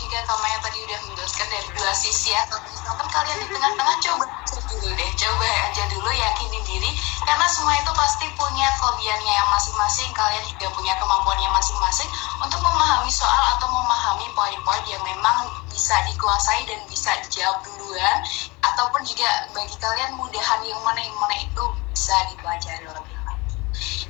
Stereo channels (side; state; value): right; quieter; 24.5 dB